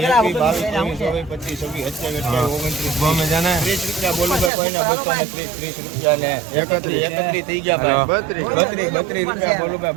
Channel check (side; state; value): left; drops out; at 4.5 s